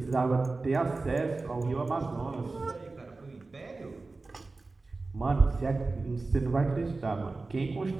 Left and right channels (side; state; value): left; quieter; 3.6 dB